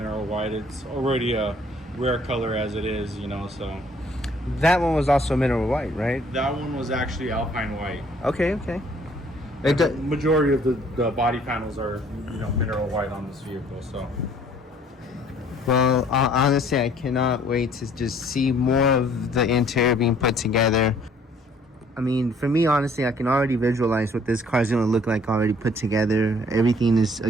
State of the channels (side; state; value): both; normal; correlation 0.59